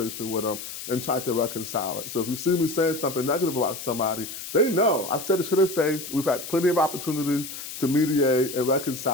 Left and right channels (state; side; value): noise; left; hiss, 9 dB below the sound